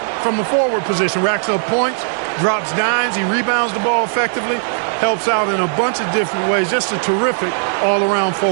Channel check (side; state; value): left; silent; digital silence